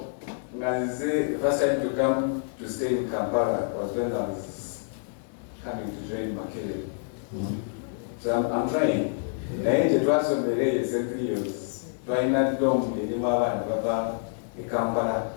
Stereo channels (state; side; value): silent; right; digital silence